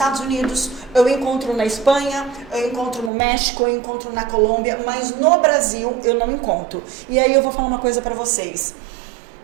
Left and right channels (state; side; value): drops out; left; at 3.1 s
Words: Unidos, eu encontro na Espanha, eu encontro no México, eu encontro na Colômbia, mas no Brasil eu não encontro. E aí eu vou falar uma coisa pra vocês.